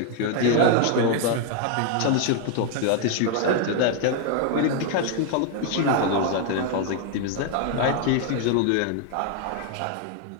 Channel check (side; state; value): both; different; correlation 0.00